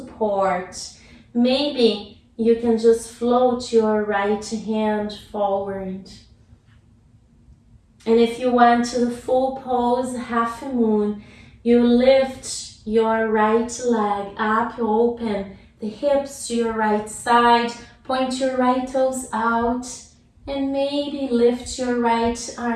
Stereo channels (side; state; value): both; identical; correlation 1.00